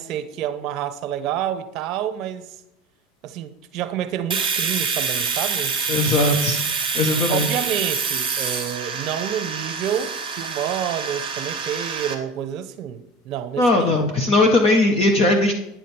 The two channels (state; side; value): normal; both; correlation 0.33